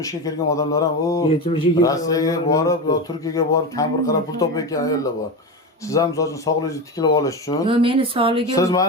ga kirgan odamlar ham, 70 ga Rossiyaga borib, yo Turkiyaga borib, kampir qarab pul topayotgan ayollar bor. Siz ham so'zini sog'ligingizni tiklab olish uchun. Yo'q, meni sog'ligim. Siz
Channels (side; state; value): both; normal; correlation 0.20